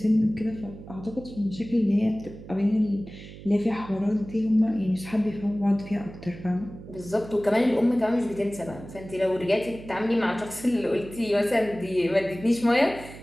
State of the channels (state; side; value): noise; right; hum, 15 dB below the sound